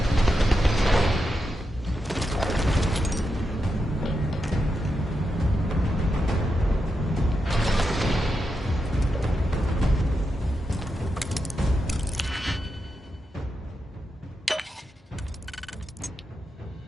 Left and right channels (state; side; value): normal; both; correlation 0.87